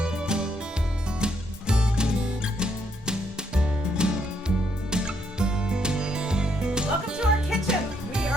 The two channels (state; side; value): normal; both; correlation 0.74